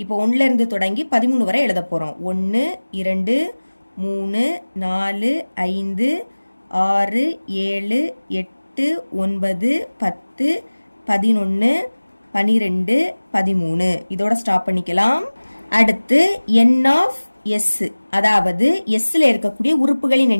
இப்போ 1ல இருந்து தொடங்கி 13 வரை எழுத போறோம். 1 2 3 4 5 6 7 8 9 10 11 12 13. இதோட ஸ்டாப் பண்ணிக்கலாம். அடுத்து என் ஆஃப் எஸ், அதாவது எஸ்ல இருக்கக்கூடிய உறுப்புகளின்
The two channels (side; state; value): both; inverted; correlation -1.00